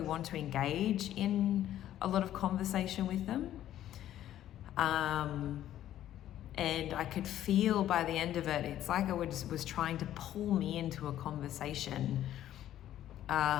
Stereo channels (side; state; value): right; quieter; 12.2 dB